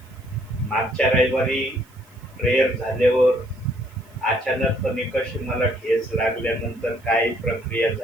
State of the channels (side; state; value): right; noise; hiss, 30 dB below the sound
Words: मागच्या रविवारी प्रेयर झाल्यावर अचानकपणे कशी मला ठेच लागल्यानंतर काय प्रक्रिया